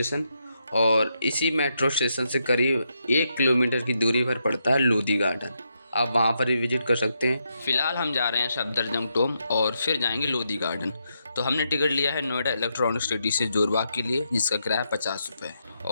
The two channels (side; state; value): both; inverted; correlation -0.81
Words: और इसी मेट्रो स्टेशन से करीब 1 किलोमीटर की दूरी पर पड़ता है लोधी गार्डन। आप वहाँ पर भी विजिट कर सकते हैं। फिलहाल हम जा रहे हैं सफदरजंग टॉम और फिर जाएंगे लोधी गार्डन। तो हमने टिकट लिया है नोएडा इलेक्ट्रॉनिक सिटी से जोरबाग के लिए, जिसका किराया 50 रुपये।